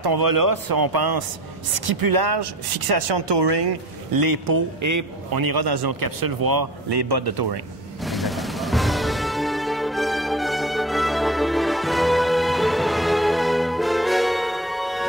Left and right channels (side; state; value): both; normal; correlation 0.39